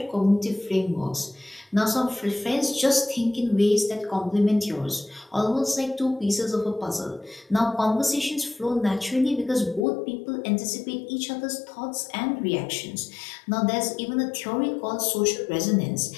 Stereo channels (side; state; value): right; drops out; at 9.9 s